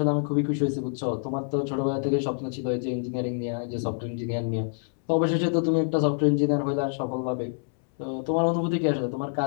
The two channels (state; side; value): silent; right; 60 dB below the other